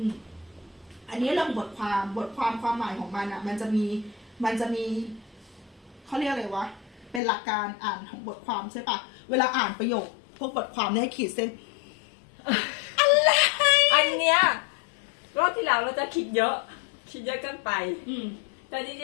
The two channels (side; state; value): right; drops out; at 7.2 s